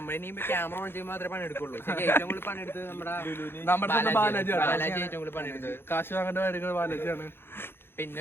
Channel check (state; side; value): late; right; 0.11 ms